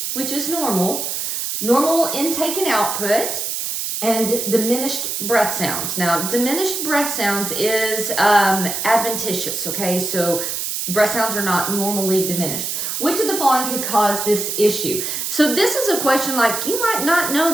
which is normal. Normal intake and output. And diminished breath sounds. Now, diminished breath sounds is adventitious, okay? So breath sounds are not normally diminished. Which of the following could cause this issue? So this is a question like you might not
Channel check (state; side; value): noise; right; hiss, 3 dB below the sound